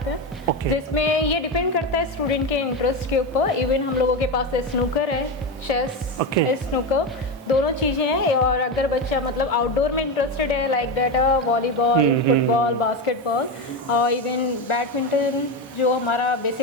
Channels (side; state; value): both; normal; correlation 0.15